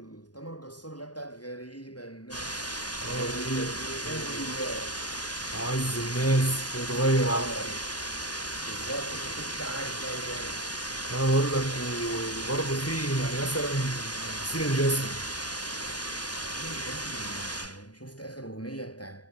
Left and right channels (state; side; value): late; right; 0.69 ms